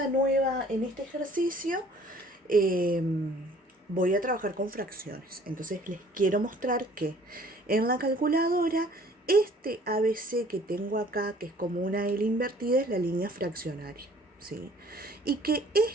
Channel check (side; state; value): both; normal; correlation 0.54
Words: ejercicio voy a trabajar con fracciones. Entonces les quiero mostrar que en la calculadora este ABC que tengo acá, que es como una L invertida, es la línea fraccionaria, ¿sí? Y que